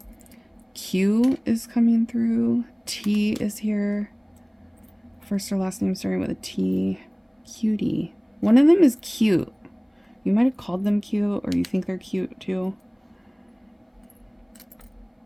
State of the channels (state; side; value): identical; both; correlation 1.00